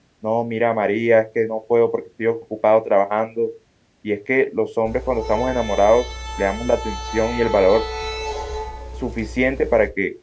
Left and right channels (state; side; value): identical; both; correlation 1.00